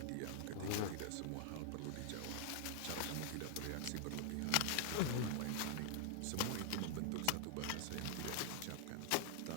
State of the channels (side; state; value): both; different; correlation 0.00